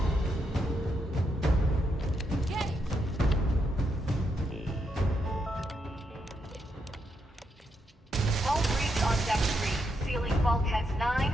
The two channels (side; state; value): both; normal; correlation 0.81